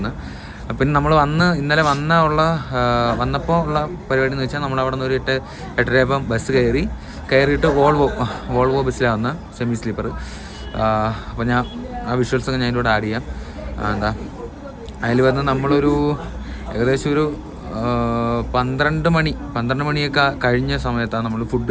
പിന്നെ നമ്മൾ ഇന്നലെ വന്നപ്പോൾ ഉള്ള പരിപാടി എന്ന് വെച്ചാൽ നമ്മൾ അവിടെ നിന്ന് ഒരു 8:30 ബസ് കയറിയിട്ട് വോൾവോ ബസ്സിലാണ് വന്നത്, സെമി സ്ലീപ്പർ. അപ്പോൾ ഞാൻ ആ വിഷ്വൽസൊക്കെ ഞാൻ ഇതിലൂടെ ആഡ് ചെയ്യാം. അതിൽ വന്ന് നമ്മളൊരു ഏകദേശം ഒരു 12 മണിയൊക്കെ കഴിഞ്ഞ സമയത്താണ് നമ്മൾ ഫുഡ്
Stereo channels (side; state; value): both; identical; correlation 1.00